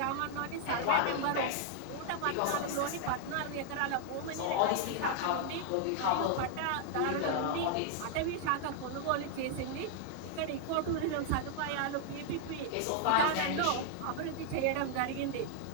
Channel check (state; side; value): different; both; correlation -0.01